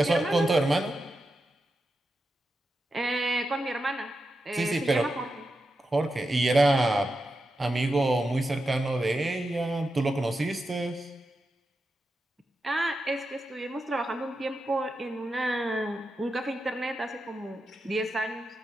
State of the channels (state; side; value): normal; both; correlation 0.89